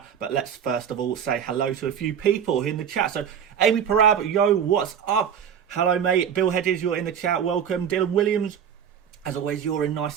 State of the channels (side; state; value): left; quieter; 8.2 dB